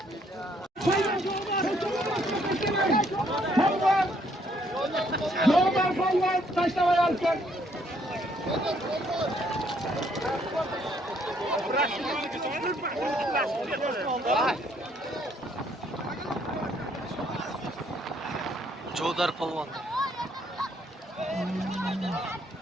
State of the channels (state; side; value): normal; both; correlation 0.68